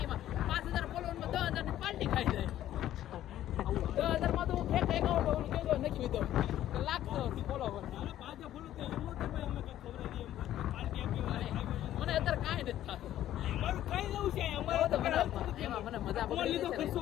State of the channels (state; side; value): quieter; right; 12.6 dB